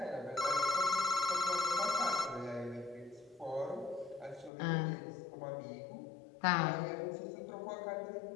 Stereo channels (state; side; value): drops out; right; at 4.5 s